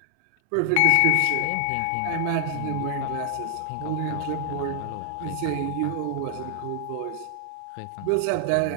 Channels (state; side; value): different; both; correlation 0.00